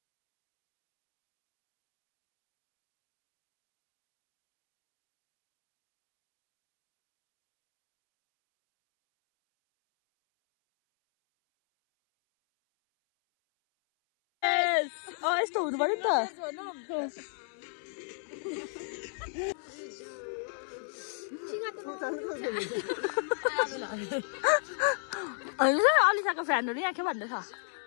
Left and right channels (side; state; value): right; silent; 57 dB below the other